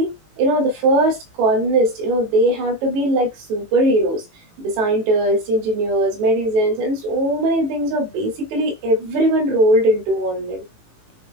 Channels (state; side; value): late; left; 18 ms